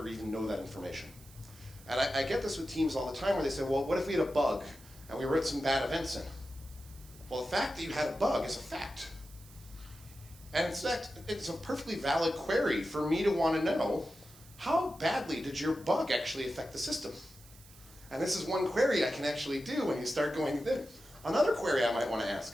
even know that information. And I get this with teams all the time where they say, well, what if we had a bug and we wrote some bad events in? Well, the fact that you had a bug is a fact. And in fact, it's a perfectly valid query for me to want to know, how badly did your bug actually affect the system? And this is one query I can actually do when you start going there. Another query I might want to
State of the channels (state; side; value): noise; right; hiss, 22 dB below the sound